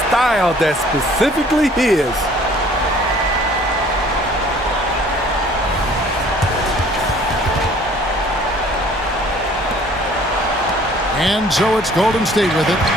style that's specifically his. And so it's Golden State with it.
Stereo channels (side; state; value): both; normal; correlation 0.54